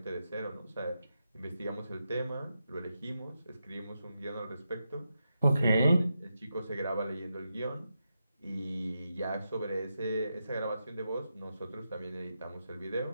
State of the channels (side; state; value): both; inverted; correlation -0.86